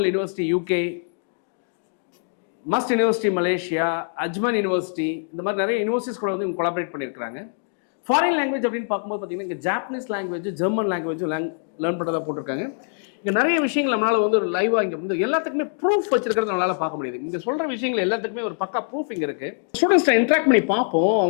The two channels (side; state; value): right; silent; digital silence